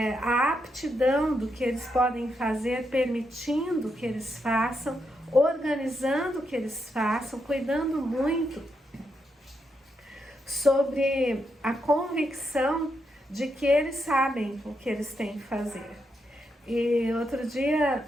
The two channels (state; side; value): normal; both; correlation 0.82